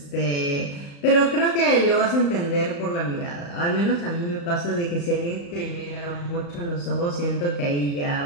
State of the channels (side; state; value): right; late; 35 ms